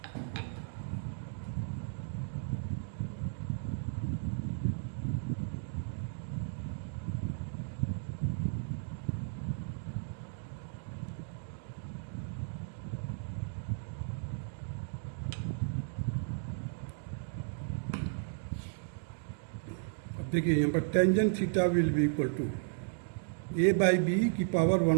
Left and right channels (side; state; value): left; silent; digital silence